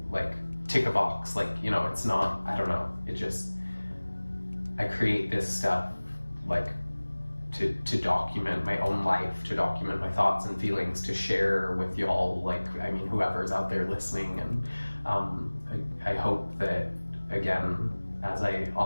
tick a box, like, you know, it's not, I don't know, it just, I create this stuff like to document my own life, to document my thoughts and feelings, to share with y'all, like, I mean, whoever's out there listening. And I hope that, again, as I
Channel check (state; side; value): inverted; both; correlation -1.00